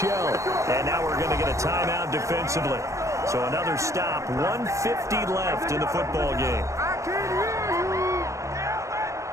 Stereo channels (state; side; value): late; left; 0.15 ms